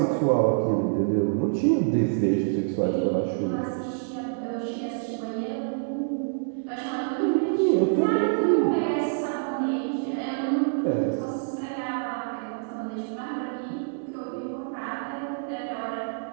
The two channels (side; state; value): left; silent; digital silence